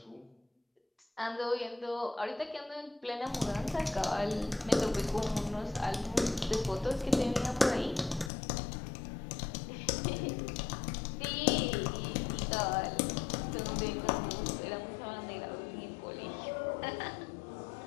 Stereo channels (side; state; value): right; drops out; at 8.3 s